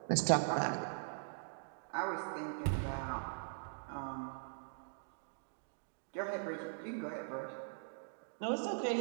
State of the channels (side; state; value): left; silent; digital silence